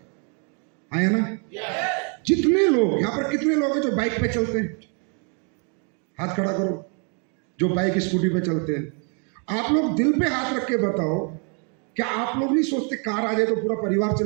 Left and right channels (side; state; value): left; quieter; 38.4 dB